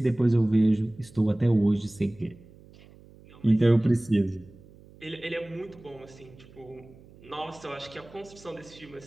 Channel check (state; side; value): noise; right; hum, 23 dB below the sound